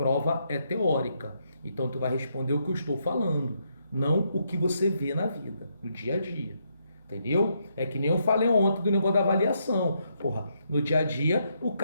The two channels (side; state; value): both; inverted; correlation -0.77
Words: é teórica. Então, tu vai responder o que eu estou falando, não o que você vê na vida, no dia a dia. Entendeu? É que nem eu falei ontem do negócio da avaliação. Porra, no dia a dia, o